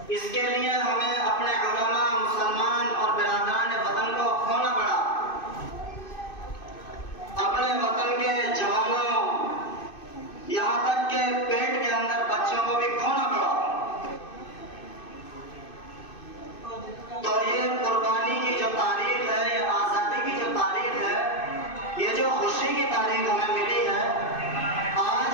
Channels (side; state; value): right; late; 2.6 ms